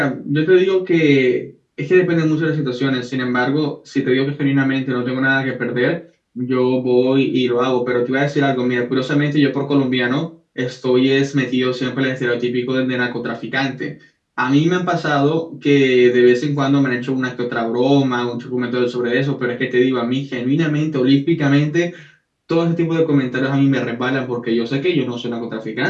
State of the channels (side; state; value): both; identical; correlation 1.00